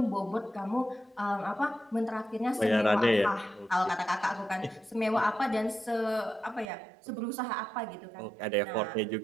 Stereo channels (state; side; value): drops out; left; at 6.7 s